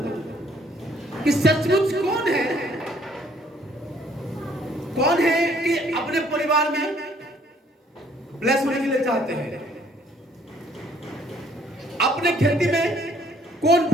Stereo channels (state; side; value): normal; both; correlation 0.62